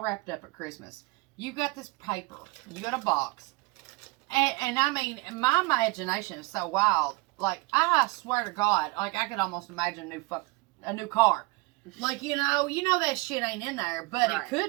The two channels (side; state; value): left; quieter; 24.9 dB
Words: wrapped up at Christmas, you got this paper, you got a box, and I mean, my imagination is so wild. Like, I swear to God, I could almost imagine a new car. Like, you know that shit ain't in there, but Right. it